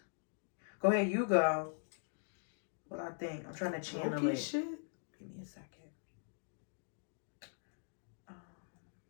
Go ahead, you go. What I think. I'm trying to channel it. Shit. Give me a second.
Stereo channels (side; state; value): right; silent; digital silence